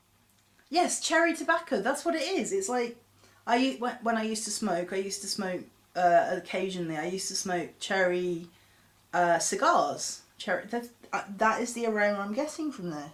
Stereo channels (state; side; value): identical; both; correlation 1.00